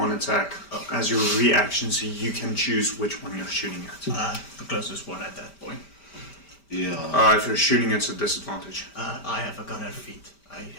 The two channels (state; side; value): late; right; 5.1 ms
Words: attack as your reaction, so you can choose which one you're shooting at. The closest one at that point. Yeah. If you're shooting, it's a disadvantage. I have a gunner feat.